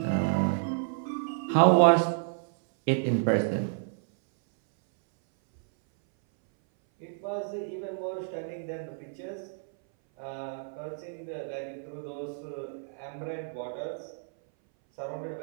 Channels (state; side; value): silent; left; 58 dB below the other